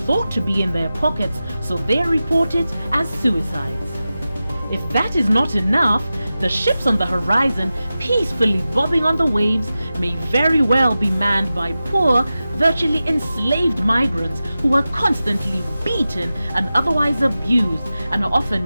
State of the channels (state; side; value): inverted; both; correlation -0.94